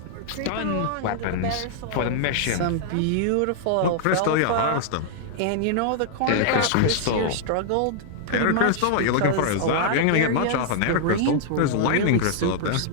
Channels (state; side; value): different; both; correlation -0.01